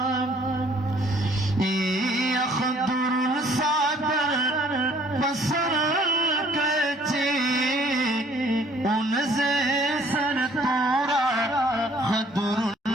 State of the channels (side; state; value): both; normal; correlation 0.59